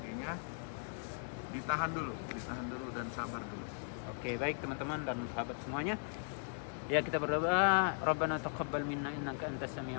ditahan dulu dan sabar dulu. Oke, baik teman-teman dan sahabat semuanya. Ya, kita berdoa, Rabbana taqabbal minna innaka antas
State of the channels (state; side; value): silent; right; 52 dB below the other